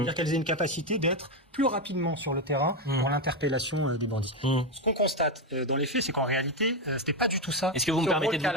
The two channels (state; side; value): normal; both; correlation 0.10